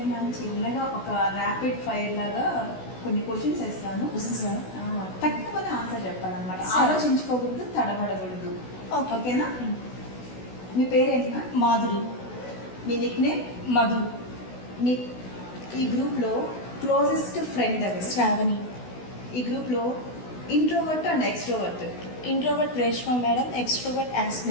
మ్యామ్, చిన్నగా ఒక ర్యాపిడ్ ఫైర్ లాగా కొన్ని క్వశ్చన్స్ వేస్తాను. సార్ తక్కువనే ఆన్సర్ చెప్పాలన్నమాట. సరే. ఆలోచించుకోకూడదు, తడబడకూడదు. ఓకేనా? మీ పేరేంటి మ్యామ్? మాధురి. మీ నిక్ నేమ్? మధు. మీ ఈ గ్రూప్లో క్లోజెస్ట్ ఫ్రెండ్ ఎవరు? శ్రావణి. ఈ గ్రూప్లో introvert and extrovert? Introvert Reshma madam, extrovert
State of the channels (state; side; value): late; right; 16 ms